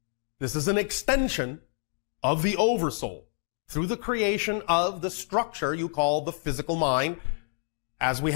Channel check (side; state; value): right; silent; digital silence